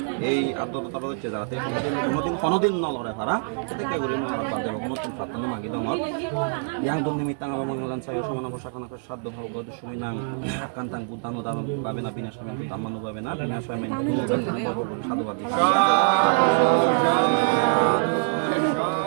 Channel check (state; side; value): silent; left; 62 dB below the other